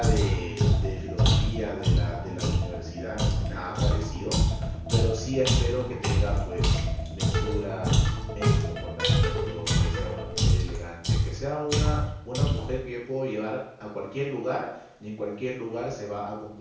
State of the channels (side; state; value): both; identical; correlation 1.00